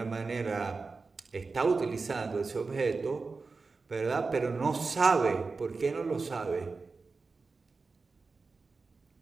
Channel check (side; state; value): left; quieter; 4.2 dB